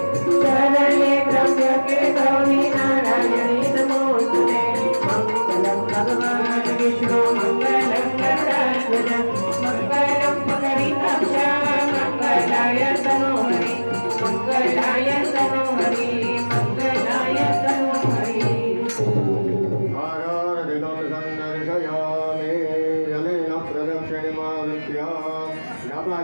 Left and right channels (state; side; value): inverted; both; correlation -1.00